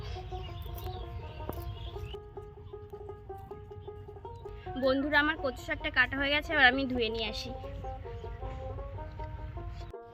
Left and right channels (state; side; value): identical; both; correlation 1.00